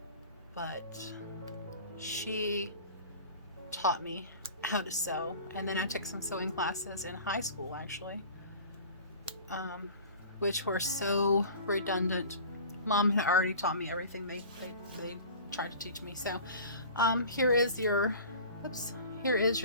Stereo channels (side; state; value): both; inverted; correlation -0.41